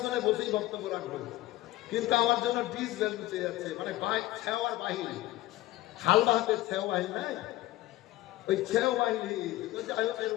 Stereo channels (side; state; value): right; quieter; 16.7 dB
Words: বসেই বক্তব্য রাখবো, কিন্তু আমার জন্য ডিস ভ্যালু চেয়ে যাচ্ছে, মানে ছেওয়ার বাহিনী, হাল বাহাতের ছেও বাহিনী নাই, ওই ছেও বাহিনী এর